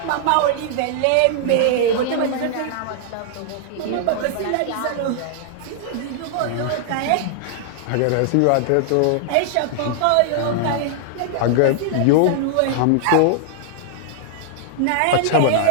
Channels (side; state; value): both; different; correlation -0.01